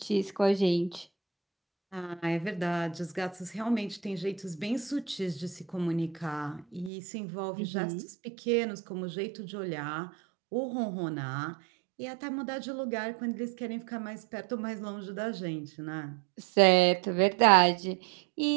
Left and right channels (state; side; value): drops out; left; at 6.9 s